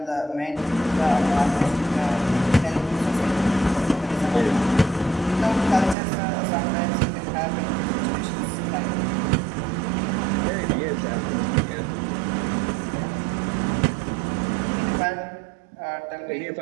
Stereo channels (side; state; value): left; drops out; at 6.0 s